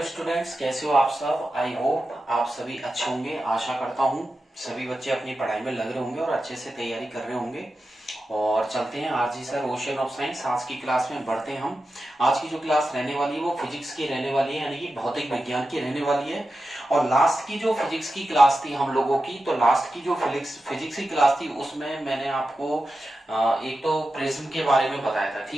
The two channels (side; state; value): both; normal; correlation 0.91